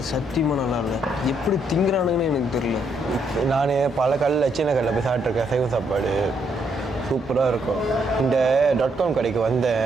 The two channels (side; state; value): both; normal; correlation 0.74